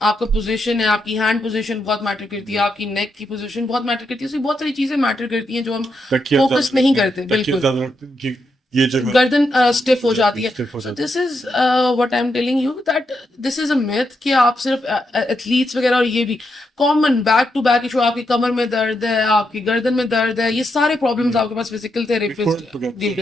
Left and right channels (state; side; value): normal; both; correlation 0.82